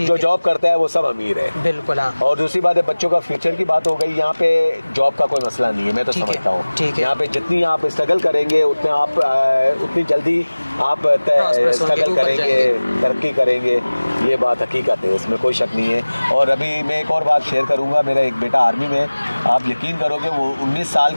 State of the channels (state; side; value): inverted; both; correlation -1.00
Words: जो जॉब करता है वो सब अमीर है। बिल्कुल। और दूसरी बात है, बच्चों का फ्यूचर की बात हो गई, यहाँ पे जॉब का कोई मसला नहीं है। मैं तो समझता हूँ यहाँ पे जितनी आप स्ट्रगल करेंगे उतनी जल्दी आप स्ट्रगल करेंगे, तरक्की करेंगे, ये बात हकीकत है, इसमें कोई शक नहीं है। और अभी मैं एक और बात शेयर करूंगा, मेरा एक बेटा आर्मी में, आप यकीन करोगे वो 19 साल